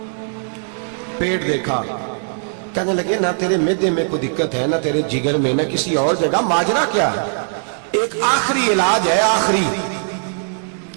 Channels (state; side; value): silent; left; digital silence